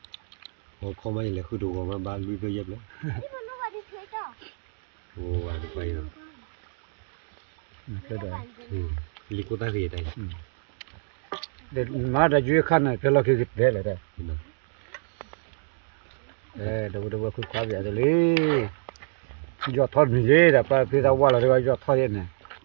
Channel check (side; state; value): left; silent; 60 dB below the other